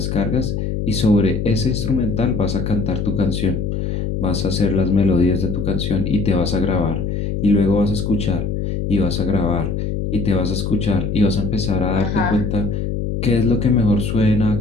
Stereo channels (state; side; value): noise; left; hum, 2 dB below the sound